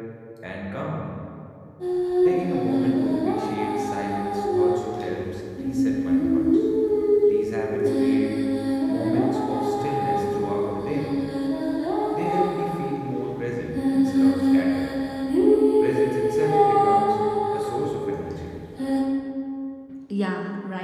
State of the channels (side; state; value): both; identical; correlation 1.00